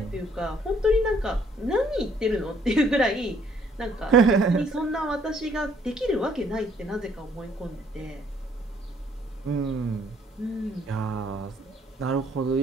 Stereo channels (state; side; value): normal; both; correlation 0.64